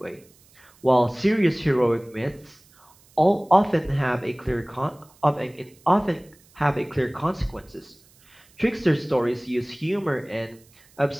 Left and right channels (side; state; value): right; noise; hiss, 29 dB below the sound